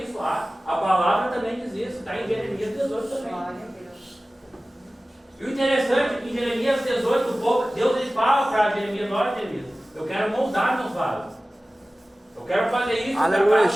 A palavra também diz isso. Está em Jeremias 18 também. Glória a Deus. E o interessante é que em Jeremias 18, Deus ele fala para Jeremias, olha Jeremias, eu quero moldar meus vasos. Eu quero fazer isso Aleluia, para a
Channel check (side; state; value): both; normal; correlation 0.97